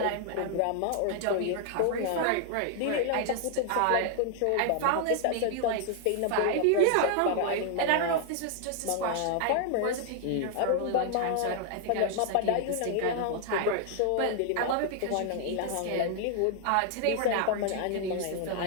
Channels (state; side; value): different; both; correlation 0.00